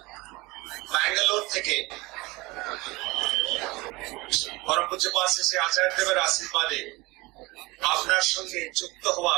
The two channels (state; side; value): quieter; left; 22.5 dB